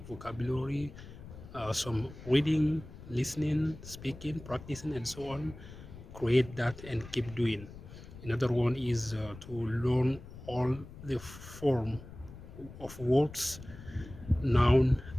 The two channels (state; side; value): noise; left; rumble, 15 dB below the sound